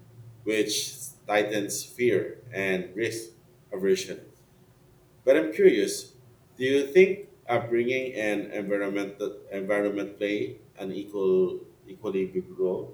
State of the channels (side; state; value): both; identical; correlation 1.00